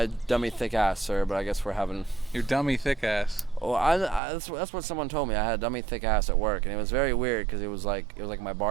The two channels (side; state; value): left; drops out; at 4.2 s